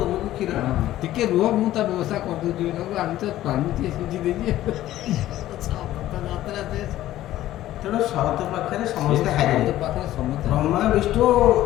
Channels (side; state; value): right; quieter; 14.1 dB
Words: କ୍ଷୀର ଟିକେ ରୁହ, ମୁଁ ତା ବ୍ୟବସ୍ଥା କରିଦେଉଛି। ଆମେ ତ ପାଣି ଟିକେ ସିଝି ଦେଇଛି। ତେଣୁ ସତ ପାଖରେ ସମସ୍ତେ ହାରିବେ। ସମସ୍ତେ ବ୍ରହ୍ମା ବିଷ୍ଣୁ